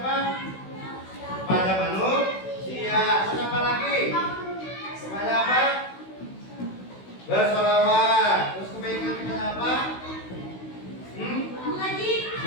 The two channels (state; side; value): late; right; 16 ms